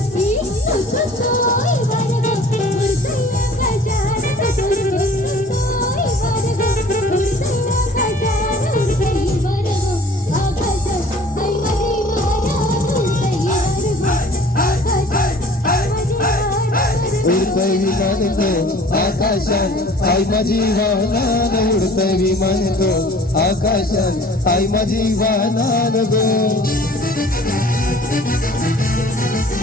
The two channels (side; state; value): both; normal; correlation 0.49